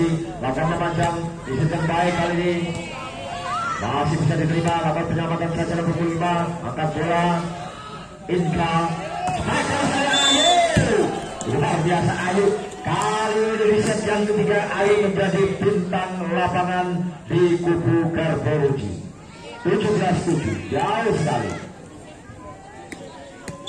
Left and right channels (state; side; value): identical; both; correlation 1.00